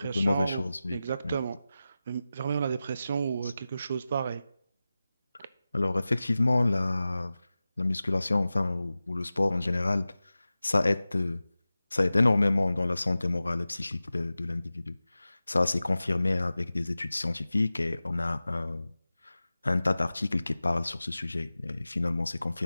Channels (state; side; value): inverted; both; correlation -0.95